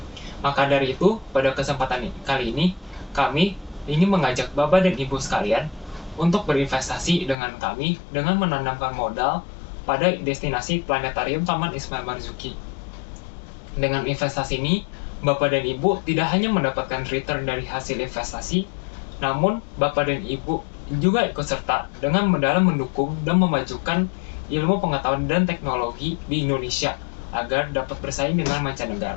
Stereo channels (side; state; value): right; drops out; at 7.4 s